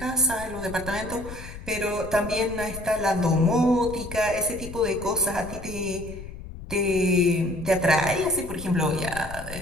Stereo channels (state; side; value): noise; left; rumble, 12 dB below the sound